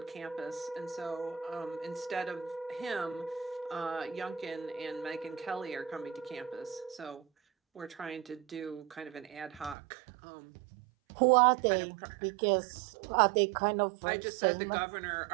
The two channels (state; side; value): drops out; left; at 9.8 s